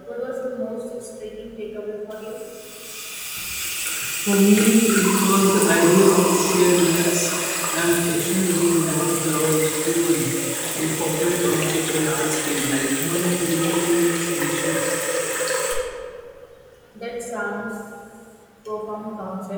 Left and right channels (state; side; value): identical; both; correlation 1.00